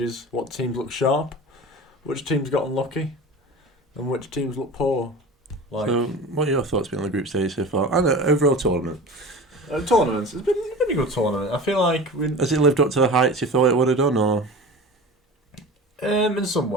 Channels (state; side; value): normal; both; correlation 0.35